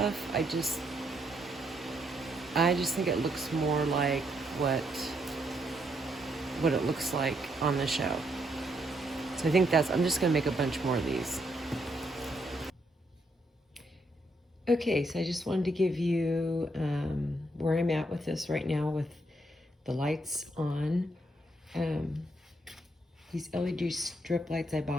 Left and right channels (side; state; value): both; normal; correlation 0.75